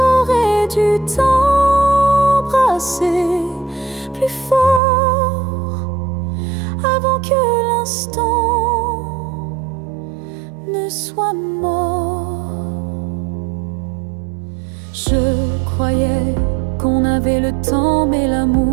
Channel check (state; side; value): drops out; left; at 4.8 s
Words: dû t'embrasser plus fort. que l'instant ne soit mort. Je croyais qu'on avait le temps, mais